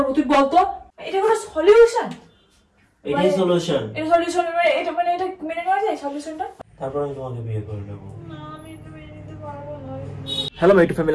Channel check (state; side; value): identical; both; correlation 1.00